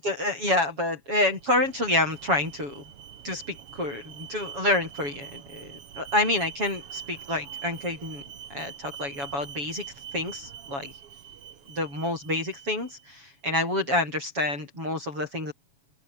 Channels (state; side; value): late; left; 7.2 ms